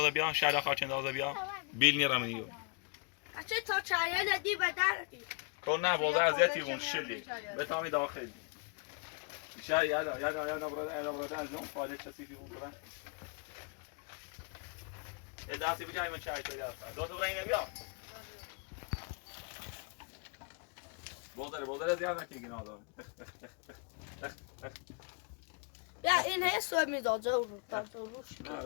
بیا شهلا خاچنداز بیا بیل نیرم نیو اچه تا چایه ندی و در کن نه بوزه ازیتی بون شلی به تامی داخلی بیشتر یادا براده از اون فعالی چسیفی بود برن یه دستی بجای من چای تو یاد دو تا برای اینه بیا بوزه زیاد نکنی گناه داره بیا این هی سوه میدازه رو نه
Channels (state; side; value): quieter; right; 37.4 dB